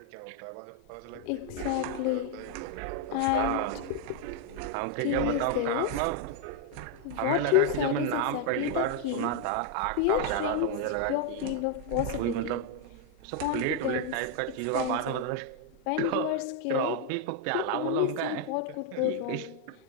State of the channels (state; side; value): different; both; correlation 0.01